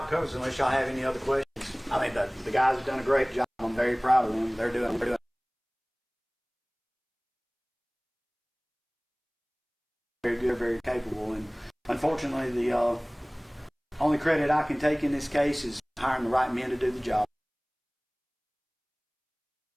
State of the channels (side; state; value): both; identical; correlation 1.00